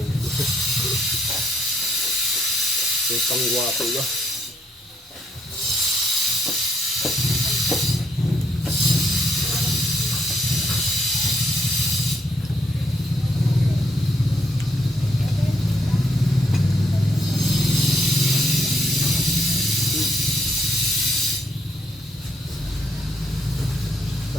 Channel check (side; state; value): both; normal; correlation 0.72